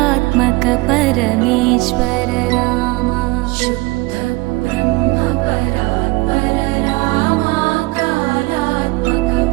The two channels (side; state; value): left; quieter; 22.8 dB